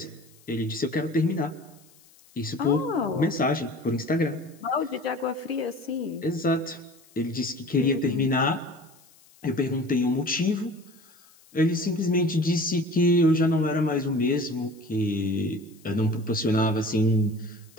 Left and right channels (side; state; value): left; noise; hiss, 28 dB below the sound